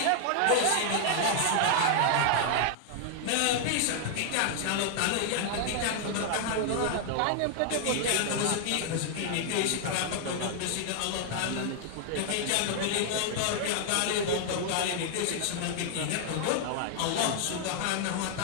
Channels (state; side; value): different; both; correlation 0.00